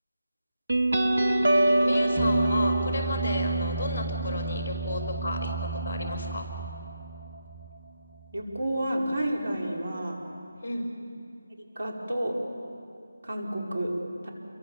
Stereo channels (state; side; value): inverted; both; correlation -0.85